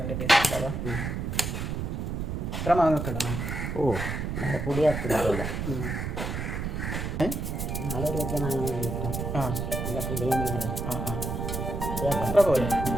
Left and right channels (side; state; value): right; noise; rumble, 3 dB below the sound